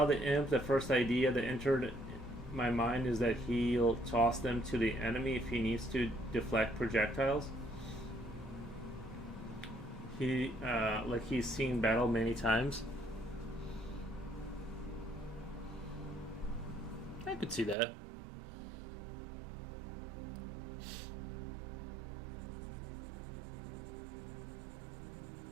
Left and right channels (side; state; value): left; drops out; at 17.8 s